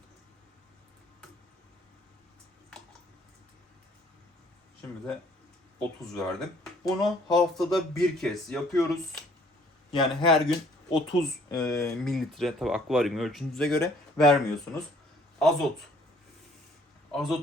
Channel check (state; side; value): normal; both; correlation 0.60